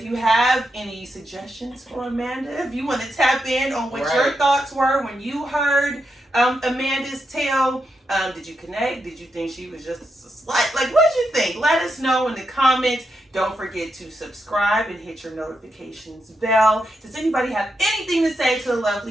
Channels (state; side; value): normal; both; correlation 0.84